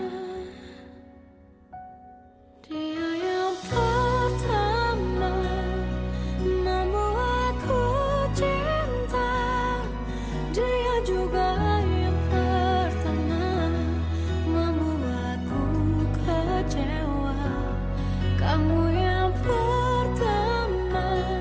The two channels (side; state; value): both; identical; correlation 1.00